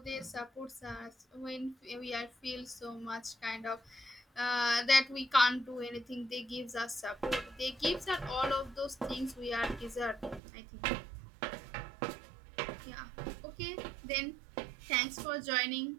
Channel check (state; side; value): drops out; left; at 10.4 s